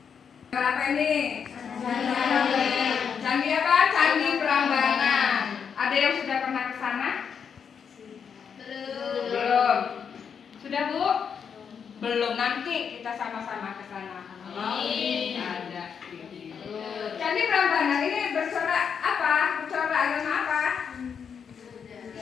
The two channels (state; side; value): quieter; right; 6.9 dB